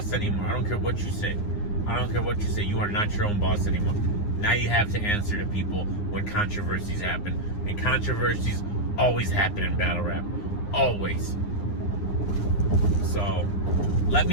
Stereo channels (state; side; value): late; right; 9.7 ms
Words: anymore. I don't care what you say. I don't care what you say. You are not your own boss anymore. Now you have to answer to people when controversies happen. And controversies always happen in battle rap. Always. So, let